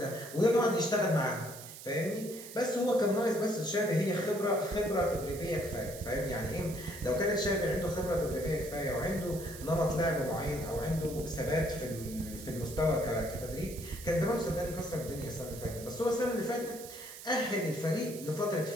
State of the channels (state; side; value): noise; right; hiss, 14 dB below the sound